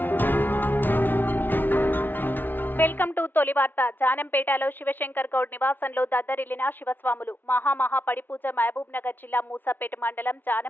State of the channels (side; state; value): right; late; 0.092 ms